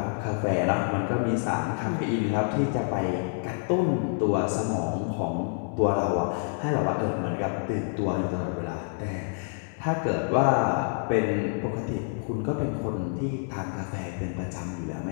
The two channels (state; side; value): silent; right; 60 dB below the other